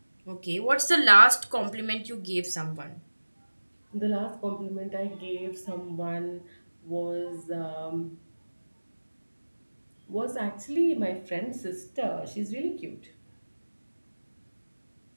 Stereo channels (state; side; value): inverted; both; correlation -1.00